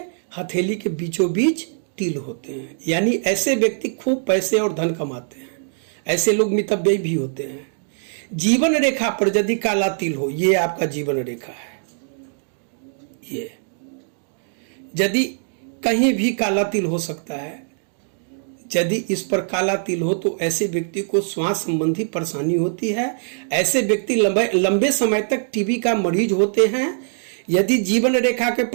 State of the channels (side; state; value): left; silent; digital silence